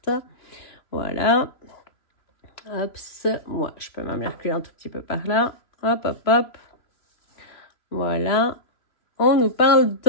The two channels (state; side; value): late; right; 3.0 ms